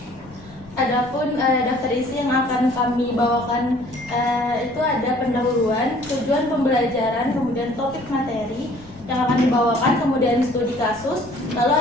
Adapun daftar isi yang akan kami bawakan itu ada pendahuluan, tujuan pembelajaran, kemudian topik materi yang akan dibawakan, kemudian studi kasus, lalu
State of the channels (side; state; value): left; noise; rumble, 22 dB below the sound